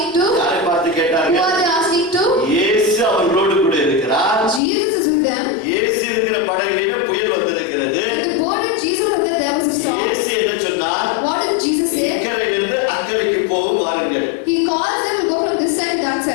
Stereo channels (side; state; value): right; drops out; at 4.6 s